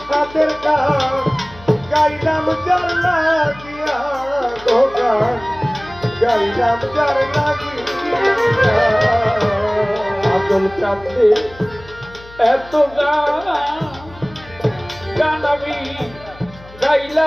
সাদের গান গাইলাম যার লাগিয়া, তো গান গাইলাম যার লাগিয়া। আজল কান্দে এত গান, গান আমি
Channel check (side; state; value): left; noise; hum, 21 dB below the sound